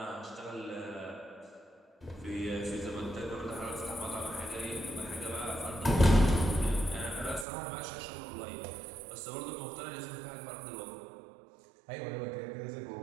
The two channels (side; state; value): left; drops out; at 7.5 s